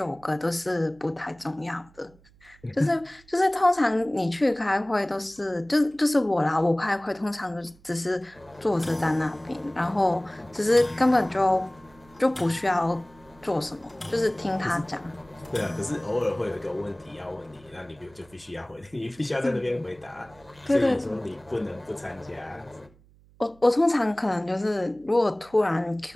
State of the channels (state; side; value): noise; right; hum, 28 dB below the sound